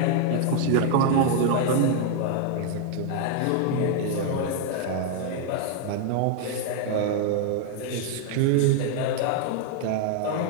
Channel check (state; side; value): different; both; correlation 0.00